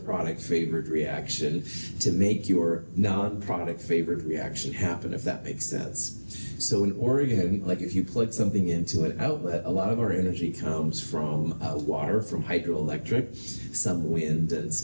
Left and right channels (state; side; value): inverted; both; correlation -1.00